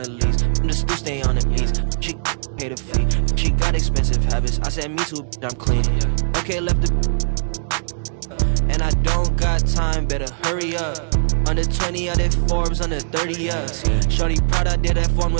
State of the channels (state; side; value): silent; left; digital silence